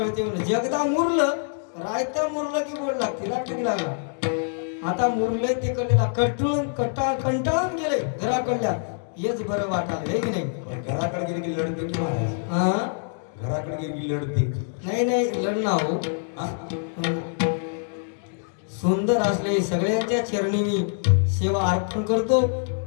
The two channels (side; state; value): right; silent; digital silence